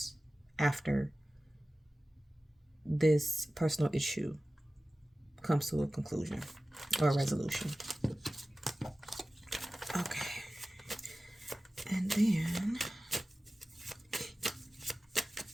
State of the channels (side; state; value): both; normal; correlation 0.96